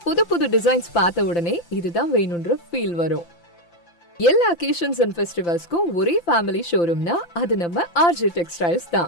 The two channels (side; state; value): right; late; 5.8 ms